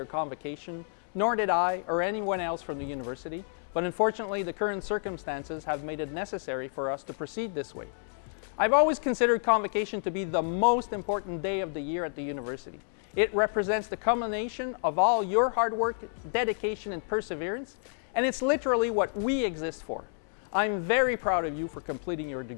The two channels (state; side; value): silent; right; 58 dB below the other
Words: convocation, nor did I or anyone else from the university, but unfortunately the current circumstances have made it necessary for us to proceed this way. I've always considered Convocation to be the most important day of the year at the university. It represents the culmination of all your hard work, dedication, and perseverance, and it's literally what we exist for. I'm very proud of you for completing your